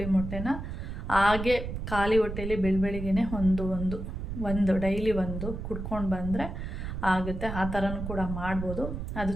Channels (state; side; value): noise; right; rumble, 6 dB below the sound